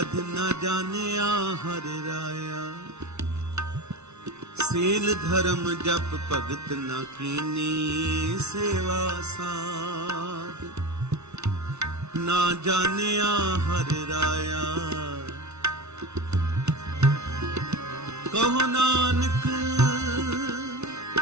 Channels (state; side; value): late; left; 0.81 ms